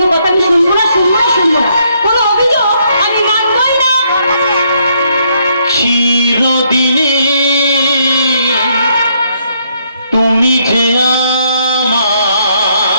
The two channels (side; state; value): both; inverted; correlation -0.71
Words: কথা আমি শুনবো না, শুনবো না, শুনবো না। কোনো অভিযোগ আমি মানবই না। চিরদিনে তুমি যে আমার,